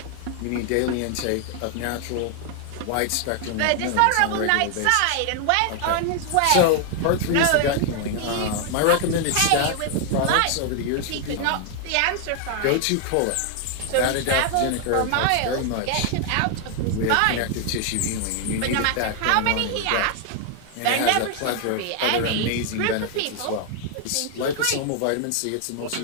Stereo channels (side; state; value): both; different; correlation 0.00